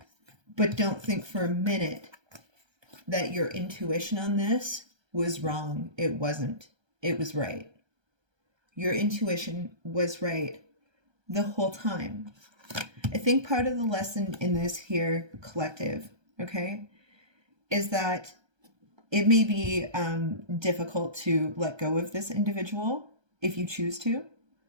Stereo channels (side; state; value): left; late; 1.3 ms